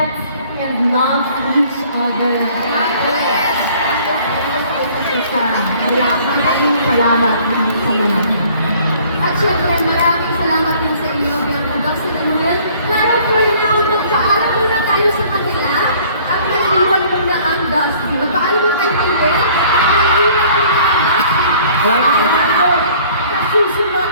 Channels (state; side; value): inverted; both; correlation -0.55